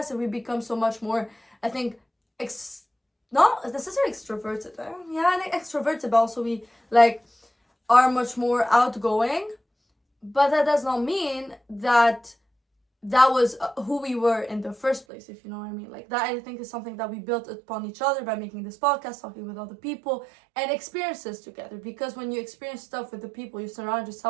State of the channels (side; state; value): left; drops out; at 15.1 s